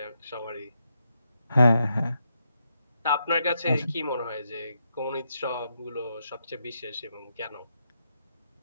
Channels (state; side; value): inverted; both; correlation -0.81